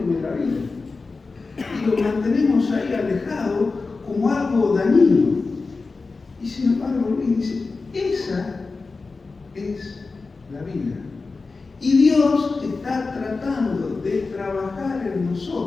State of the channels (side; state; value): right; quieter; 4.0 dB